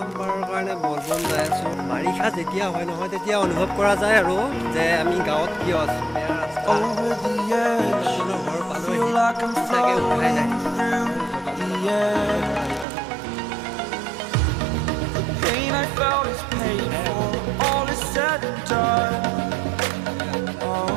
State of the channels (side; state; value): left; drops out; at 12.9 s